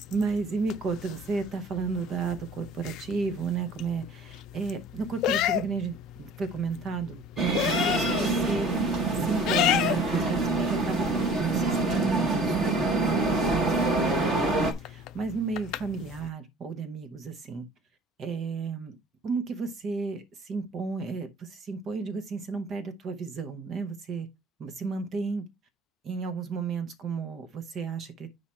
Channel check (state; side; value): normal; both; correlation 0.48